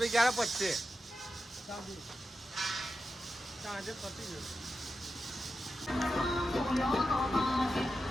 ક્યારે પચશે સાંજે. સાંજે પતી જશે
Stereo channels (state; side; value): normal; both; correlation 0.90